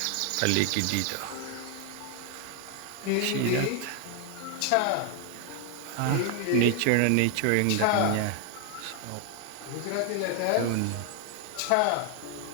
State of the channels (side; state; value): both; different; correlation 0.00